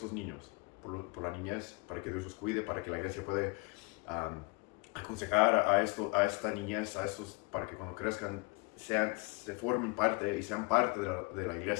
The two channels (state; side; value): quieter; right; 28.2 dB